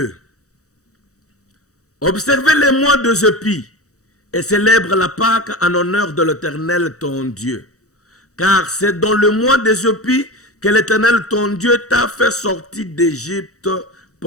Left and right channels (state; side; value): late; right; 0.65 ms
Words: Observez les mois de Zéphi et célèbre la Pâque en honneur de l'Éternel ton Dieu. Car c'est dans le mois de Zéphi que l'Éternel ton Dieu t'a fait sortir d'Égypte